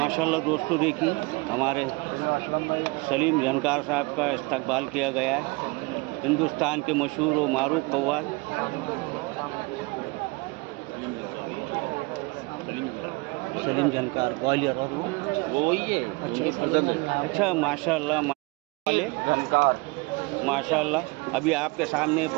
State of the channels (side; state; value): left; quieter; 26.6 dB